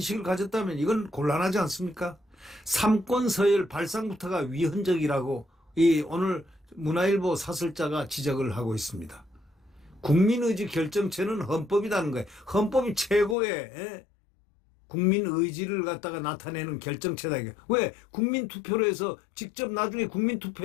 가졌다면 이건 곤란하지 않습니까? 삼권 서열 발상부터가 위헌적이라고 오늘 문화일보 사설자가 지적을 하고 있습니다. 국민의지 결정체는 헌법이라는 거예요. 헌법이 최고의 국민의지를 갖다가 나타내는 결정체다. 이게. 왜? 국민투표로 해서 직접 나중에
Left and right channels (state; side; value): drops out; right; at 13.4 s